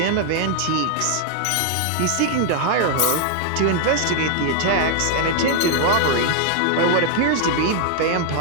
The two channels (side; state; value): both; different; correlation 0.00